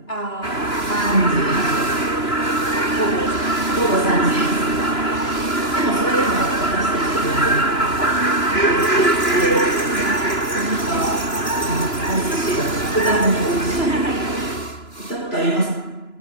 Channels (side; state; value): right; late; 2.9 ms